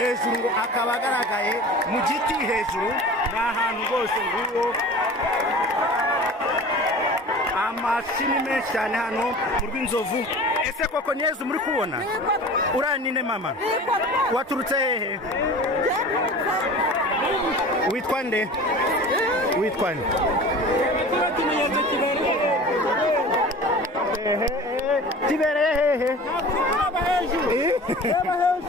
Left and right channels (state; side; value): normal; both; correlation 0.39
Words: ngo akaba agaragaye mu giti hejuru ni ahantu rwose nguwo amashini menshi cyane hano mu rw'inzovu. Ese koko ni Yezu muri kubona? Uranine mama, waturutse hehe? Witwa nde? Witwa nde? Kibereye hehe?